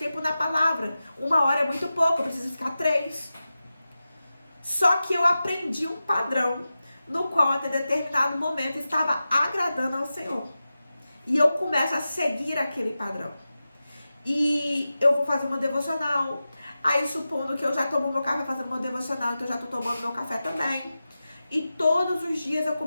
na palavra. 1 hora é muito pouco, eu preciso ficar 3. Só que eu aprendi um padrão no qual até determinado momento estava agradando ao Senhor. E eu começo a seguir aquele padrão. E eu vou fazer uma devocional. Aí supondo que eu já tomo meu café fazendo uma devocional, então eu já estou tomando meu café também. E todos os dias eu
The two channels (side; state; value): both; inverted; correlation -0.94